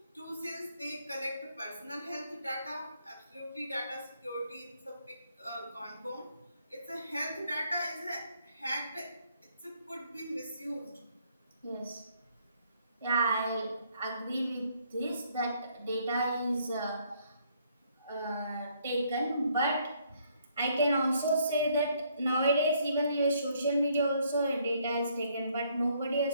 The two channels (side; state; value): both; inverted; correlation -0.68